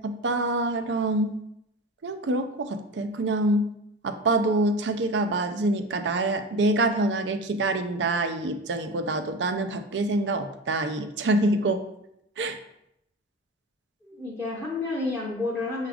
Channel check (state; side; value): normal; both; correlation 0.29